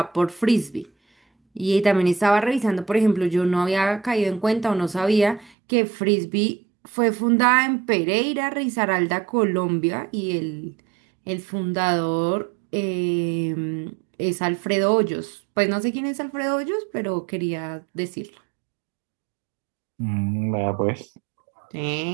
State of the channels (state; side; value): drops out; left; at 5.5 s